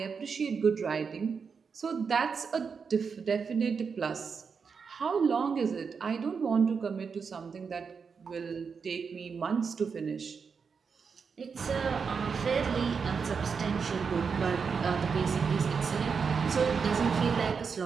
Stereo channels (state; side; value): quieter; left; 5.8 dB